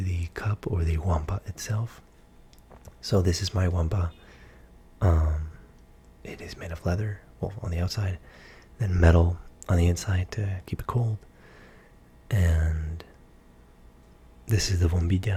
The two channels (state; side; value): identical; both; correlation 1.00